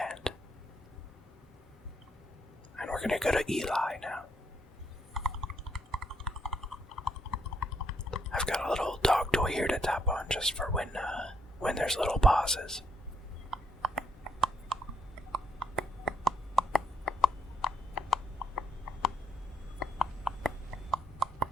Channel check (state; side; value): normal; both; correlation 0.73